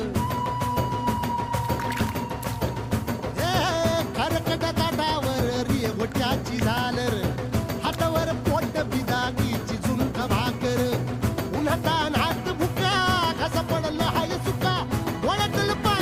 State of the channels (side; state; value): both; identical; correlation 1.00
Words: खरकट ताटावर रे गोट्याची झालर हातावर पोट बिदागीची झुणका भाकर उन्हातान हात भुका कसा पडलं हाय सुका वळतल